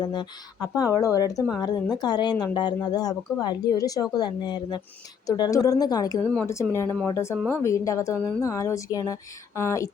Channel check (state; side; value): quieter; right; 7.1 dB